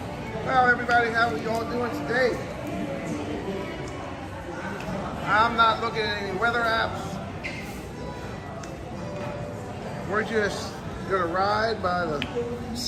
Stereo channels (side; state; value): both; identical; correlation 1.00